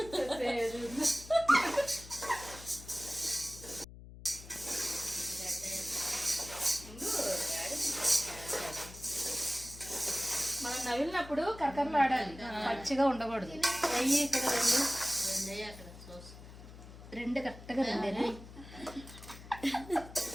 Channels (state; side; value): noise; left; hum, 16 dB below the sound